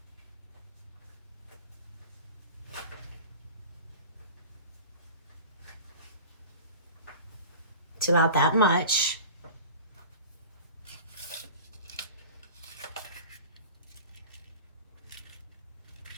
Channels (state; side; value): inverted; both; correlation -0.38